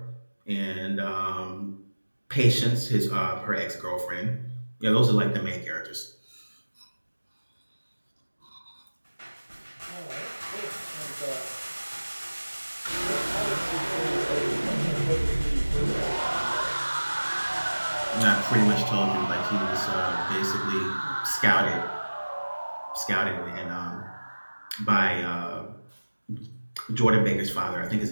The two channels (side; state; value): both; inverted; correlation -1.00